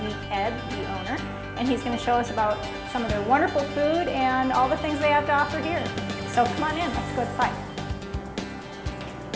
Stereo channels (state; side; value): identical; both; correlation 1.00